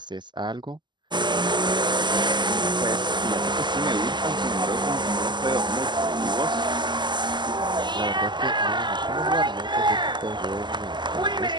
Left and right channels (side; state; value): left; late; 0.21 ms